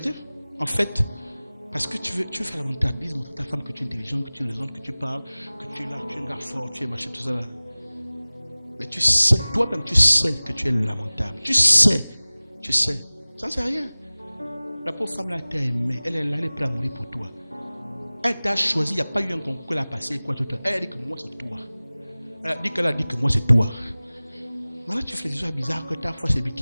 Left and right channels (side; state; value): both; inverted; correlation -0.99